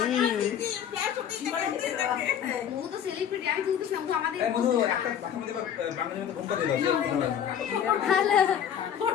ও তো সেলিব্রিটি, আমি কিন্তু শুনবো আমাদের এই মধু একটা বাসার মধ্যে বাঙালির মতো ঘুমটা দিল। হ্যালো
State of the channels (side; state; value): right; quieter; 9.0 dB